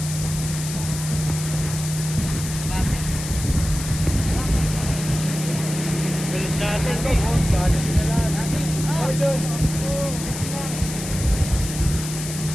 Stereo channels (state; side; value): noise; left; hiss, 8 dB below the sound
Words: Galit natin to. Galit na lang. Oh, doon.